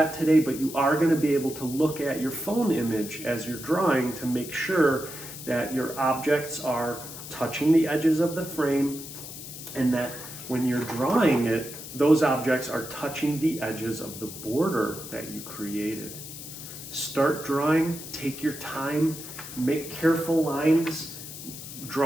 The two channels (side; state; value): left; noise; hiss, 11 dB below the sound